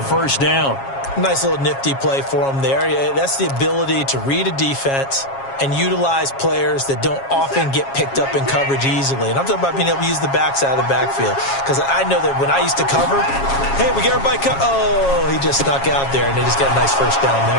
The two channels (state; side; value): late; right; 7.3 ms